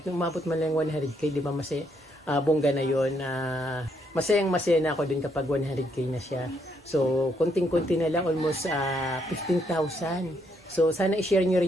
umabot man lang 100k, di ba bongga na yun. Masayang-masaya na ako din kapag 100k na siya. So kunting-kunti na lang, almost 15,000. So sana i-share nyo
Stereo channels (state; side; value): normal; both; correlation 0.74